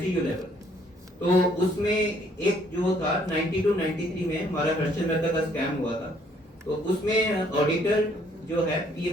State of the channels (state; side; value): normal; both; correlation 0.64